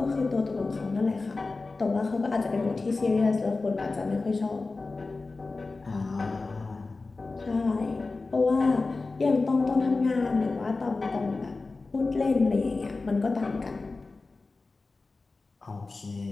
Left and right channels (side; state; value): right; quieter; 3.7 dB